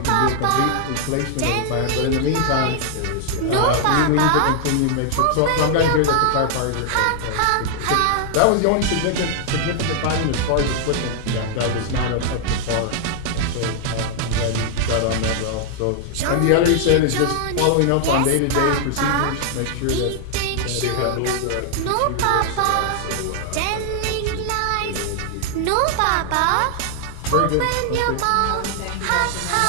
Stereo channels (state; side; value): different; both; correlation 0.00